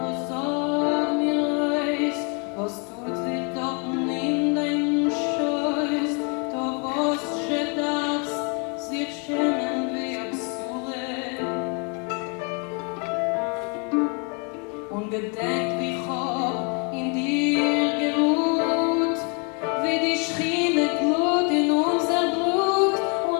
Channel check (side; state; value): right; quieter; 35.6 dB